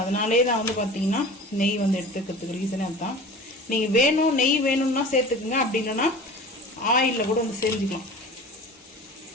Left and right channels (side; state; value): both; normal; correlation 0.39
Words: அதனாலே தான் வந்து பார்த்தீங்கன்னா நெய் வந்து எடுத்துக்கிறதுக்கு ரீசனே அதுதான். நீங்கள் வேணும் நெய் வேணும்னா சேர்த்துக்குங்க, அப்படி இல்லைன்னா ஆயிலில் கூட வந்து செஞ்சுக்கலாம்.